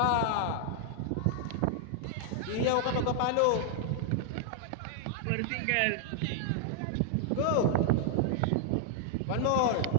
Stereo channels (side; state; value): both; different; correlation 0.00